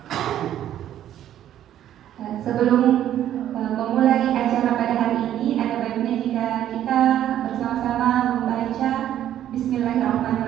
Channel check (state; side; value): quieter; left; 11.4 dB